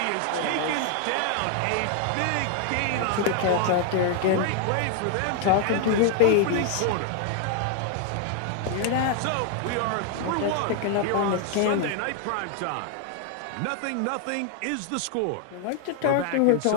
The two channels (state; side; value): different; both; correlation 0.00